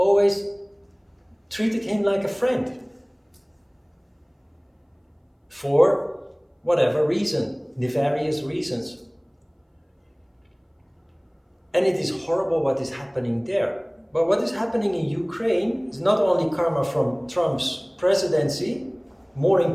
treated him like a friend. For whatever reason, nefarious reasons. And it is horrible what is happening there. But what is happening in Ukraine is not only karma from Trump's presidency, more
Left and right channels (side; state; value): both; identical; correlation 1.00